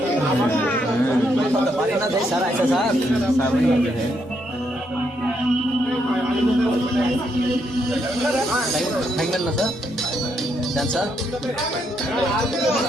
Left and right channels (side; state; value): both; normal; correlation 0.76